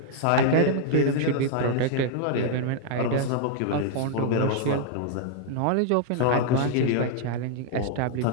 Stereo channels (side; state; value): both; different; correlation -0.01